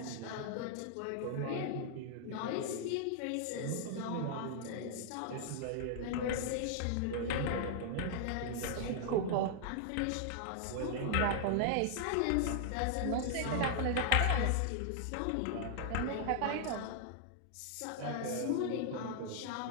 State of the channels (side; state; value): both; different; correlation -0.01